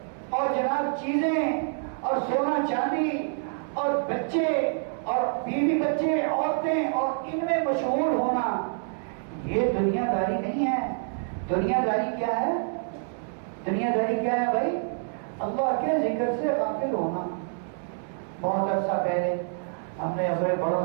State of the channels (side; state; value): left; silent; digital silence